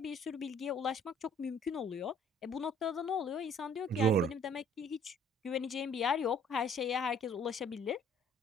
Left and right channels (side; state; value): both; normal; correlation 0.58